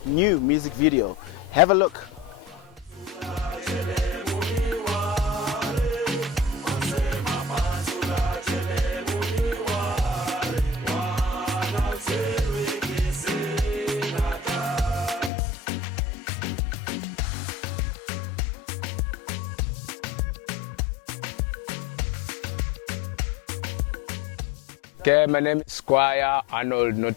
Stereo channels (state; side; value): drops out; right; at 15.3 s